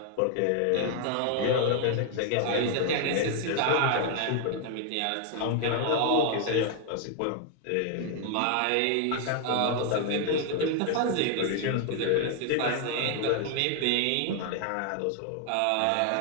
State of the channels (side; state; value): both; different; correlation 0.00